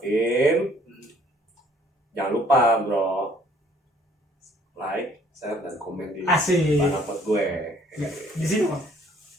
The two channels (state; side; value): normal; both; correlation 0.60